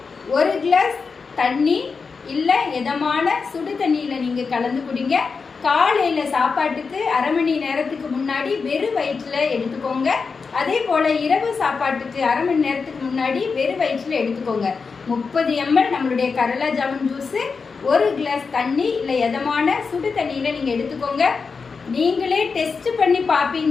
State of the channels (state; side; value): quieter; right; 5.0 dB